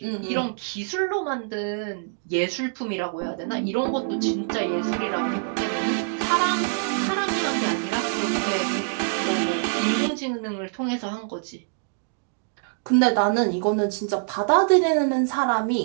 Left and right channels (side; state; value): left; silent; digital silence